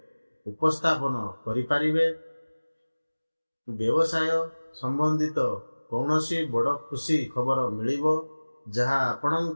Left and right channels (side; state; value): both; inverted; correlation -1.00